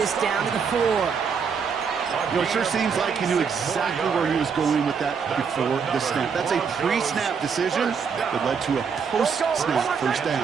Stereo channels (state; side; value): quieter; left; 6.2 dB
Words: down to the 4. You know, it sure seems like he knew exactly where he was going with that before the snap. That's a pre-snap decision that led to a post-snap 1st